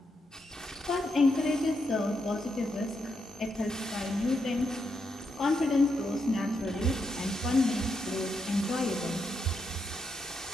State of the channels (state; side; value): normal; both; correlation 0.81